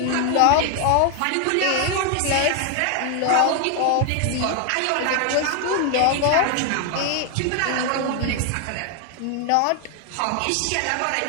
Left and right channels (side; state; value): both; different; correlation 0.00